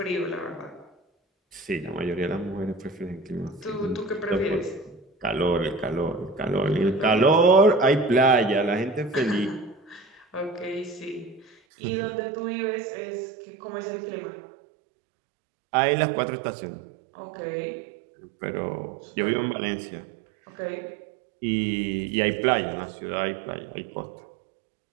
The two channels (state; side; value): drops out; left; at 11.6 s